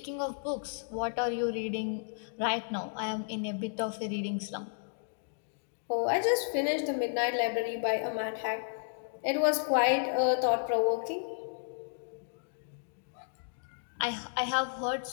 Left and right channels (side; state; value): right; silent; digital silence